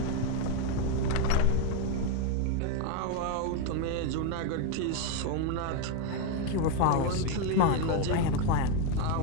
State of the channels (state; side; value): different; both; correlation 0.02